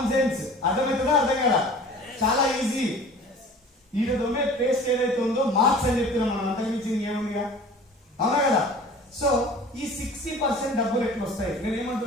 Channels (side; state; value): both; normal; correlation 0.44